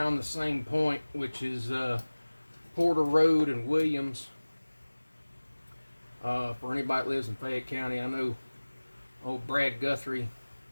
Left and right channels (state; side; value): inverted; both; correlation -1.00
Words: the same point, which is Porter Road and Williams. For anybody that lives in Fayette County, I know old Brad Guthrie